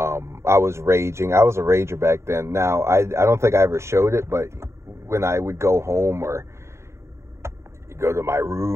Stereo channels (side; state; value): left; late; 0.13 ms